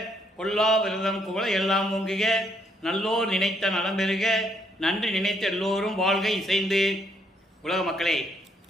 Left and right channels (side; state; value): both; normal; correlation 0.72